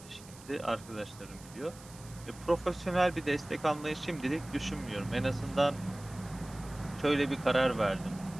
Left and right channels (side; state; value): right; noise; hiss, 20 dB below the sound